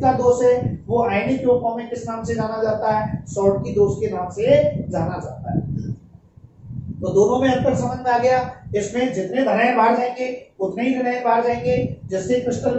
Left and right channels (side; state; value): both; identical; correlation 1.00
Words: का दोष है वो आयनिक यौगिकों में किस नाम से जाना जाता है? शॉर्टकी दोष के नाम से जाना जाता है। तो दोनों में अंतर समझ में आ गया। इसमें जितने धनायन बाहर जाएंगे उतने ही ऋणायन बाहर जाएंगे, जिससे क्रिस्टल